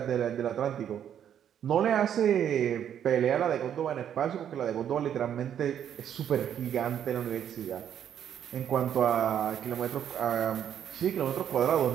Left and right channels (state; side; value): quieter; left; 9.4 dB